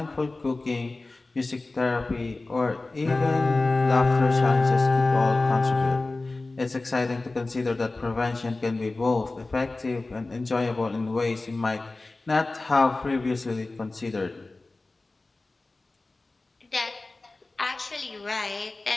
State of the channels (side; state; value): right; quieter; 3.2 dB